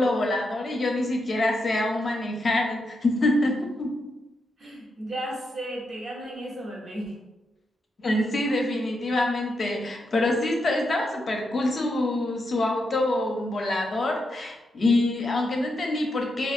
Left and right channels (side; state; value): both; normal; correlation 0.83